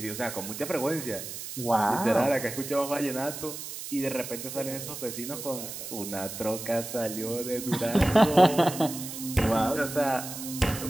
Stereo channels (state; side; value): noise; right; hiss, 9 dB below the sound